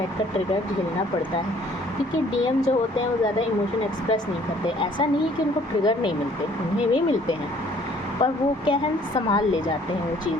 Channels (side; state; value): both; normal; correlation 0.58